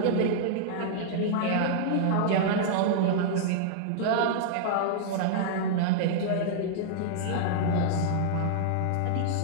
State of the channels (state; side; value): different; both; correlation -0.01